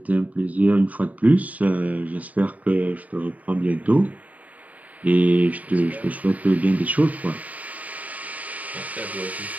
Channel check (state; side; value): late; left; 0.072 ms